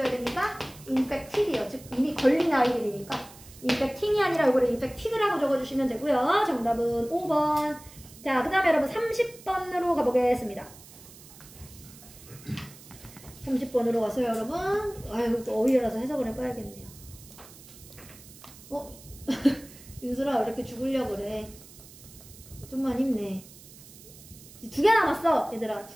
됩니까? infected이요. 즉 이미 걸린 아이들이니까 infecting이 아니라 이거를 infected라고 적어주시면 되고요. 정답은 5번. 자 그 다음에 여러분 30번으로 가보겠습니다. 30번으로 가서요 여러분. 아유 또 어휘라서 해석을 해봐야겠네요. 윤슬아 왜 이렇게 죽으려고 그래? 좀만 힘내. 2개 남았어 얘들아.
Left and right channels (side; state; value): right; noise; hiss, 20 dB below the sound